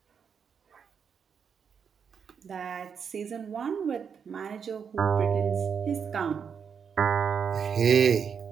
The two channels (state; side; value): quieter; left; 6.8 dB